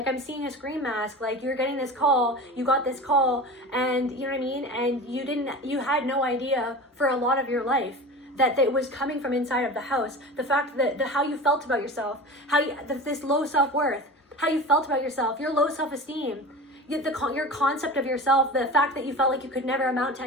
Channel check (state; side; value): normal; both; correlation 0.33